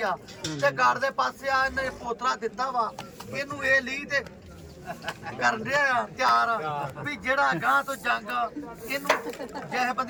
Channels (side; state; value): both; identical; correlation 1.00